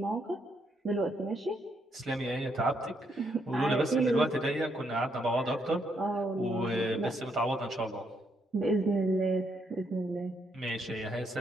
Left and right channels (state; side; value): normal; both; correlation 0.75